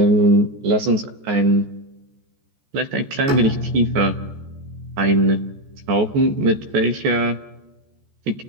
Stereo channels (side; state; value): left; late; 14 ms